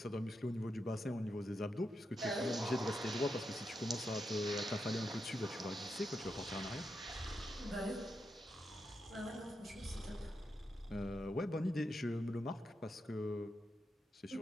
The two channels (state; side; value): normal; both; correlation 0.85